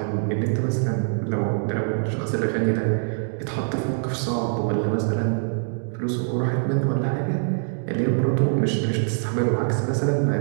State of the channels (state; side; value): silent; left; digital silence